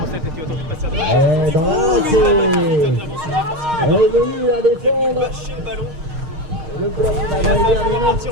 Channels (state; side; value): late; left; 6.5 ms